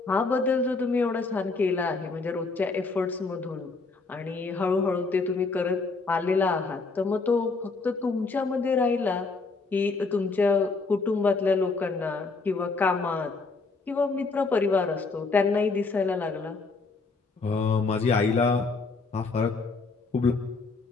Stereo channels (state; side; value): quieter; right; 4.0 dB